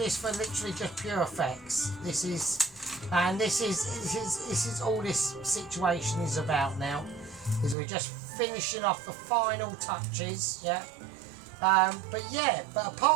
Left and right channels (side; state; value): left; drops out; at 7.8 s